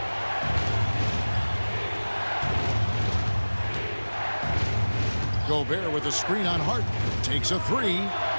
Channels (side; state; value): both; inverted; correlation -1.00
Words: Gobert with a screen on Harden. Takes a three.